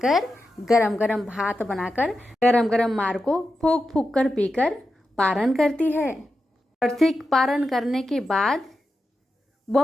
गरम गरम भात बनाकर, गरम गरम मार को फूक फूक कर पीकर पारण करती है। और ठीक पारण करने के बाद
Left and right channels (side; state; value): both; normal; correlation 0.90